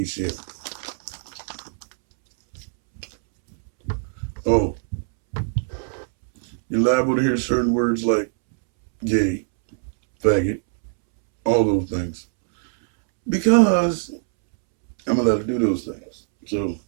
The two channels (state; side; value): silent; left; 64 dB below the other